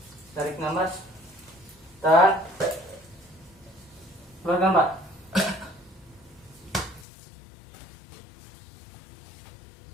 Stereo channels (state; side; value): drops out; right; at 7.1 s